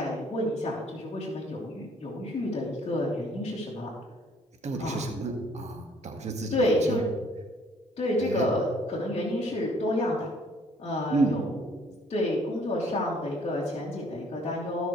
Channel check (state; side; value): normal; both; correlation 0.60